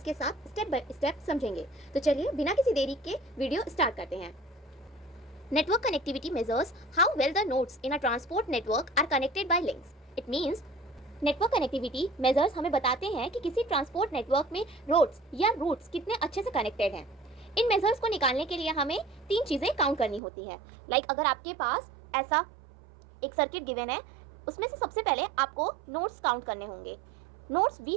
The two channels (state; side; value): drops out; left; at 20.2 s